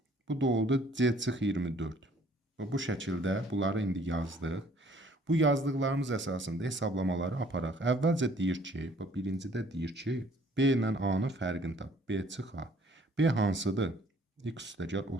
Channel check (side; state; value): both; normal; correlation 0.58